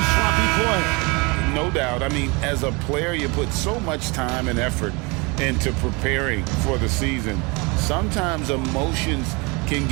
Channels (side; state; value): left; quieter; 28.0 dB